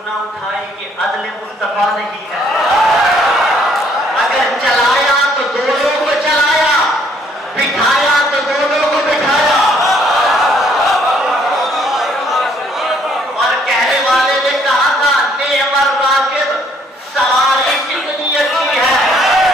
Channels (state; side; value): normal; both; correlation 0.65